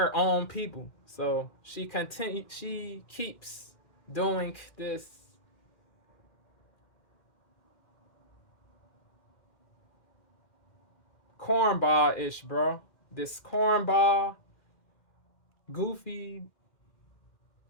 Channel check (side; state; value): right; late; 2.4 ms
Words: own people. So she keeps doing this cornball-ish, bro. This cornball, goofy,